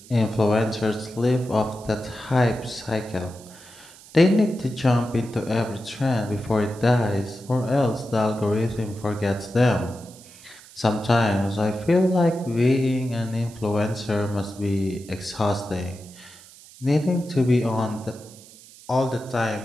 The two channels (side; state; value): right; noise; hiss, 21 dB below the sound